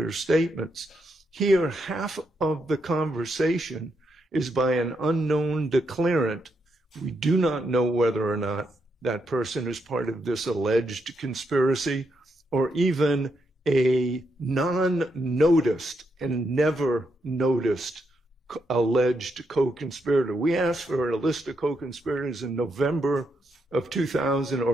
statements." Here, half of the conversation is by an unknown declarant. We do not know whether or not that person is part of this alleged conspiracy, or even a non-noticed and never noticed alleged co-conspirator. We asked for a list of co-conspirators in November of 2000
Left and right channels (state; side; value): normal; both; correlation 0.80